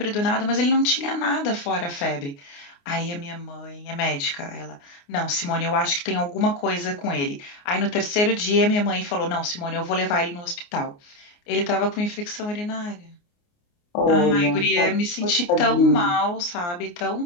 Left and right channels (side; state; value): right; late; 29 ms